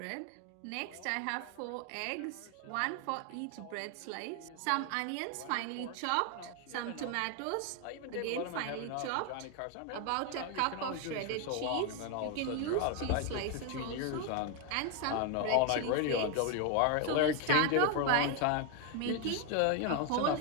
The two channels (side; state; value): both; different; correlation 0.01